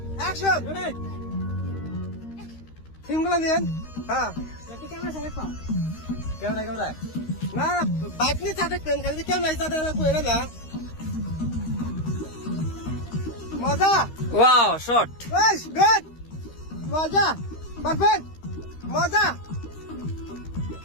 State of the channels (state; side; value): late; right; 13 ms